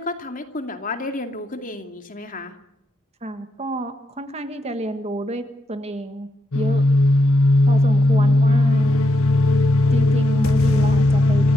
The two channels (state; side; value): normal; both; correlation 0.82